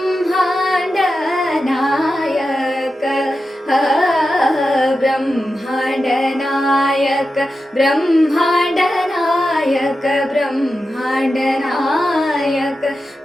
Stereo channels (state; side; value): normal; both; correlation 0.91